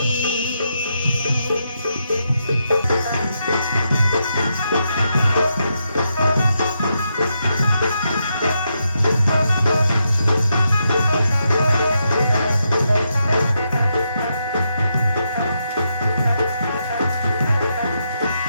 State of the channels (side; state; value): both; inverted; correlation -0.82